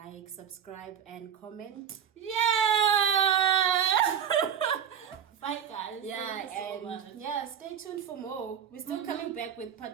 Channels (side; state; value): left; quieter; 8.7 dB